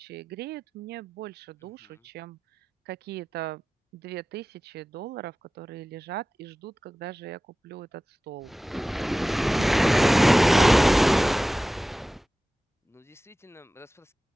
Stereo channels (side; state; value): both; normal; correlation 0.96